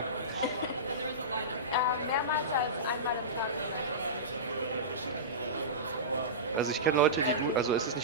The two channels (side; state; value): both; normal; correlation -0.20